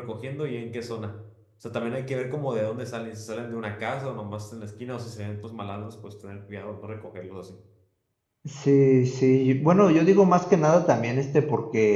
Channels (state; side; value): identical; both; correlation 1.00